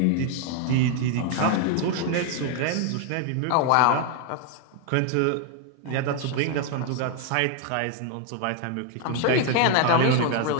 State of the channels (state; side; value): different; both; correlation 0.01